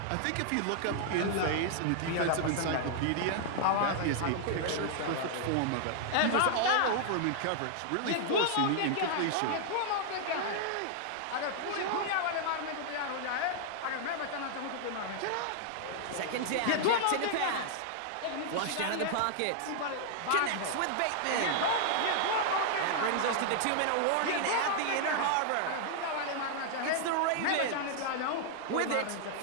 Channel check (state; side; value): different; both; correlation -0.01